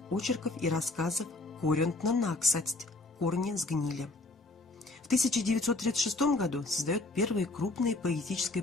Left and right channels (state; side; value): quieter; right; 3.0 dB